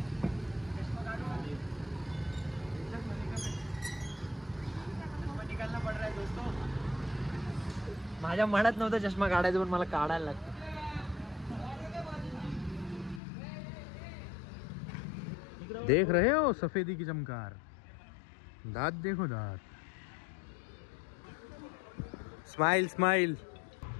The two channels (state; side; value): drops out; right; at 13.2 s